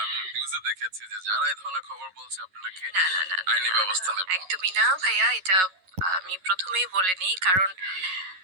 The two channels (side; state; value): left; late; 11 ms